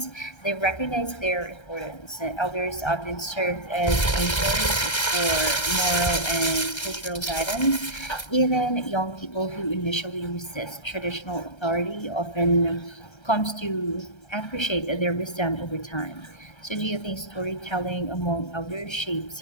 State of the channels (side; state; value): right; late; 1.3 ms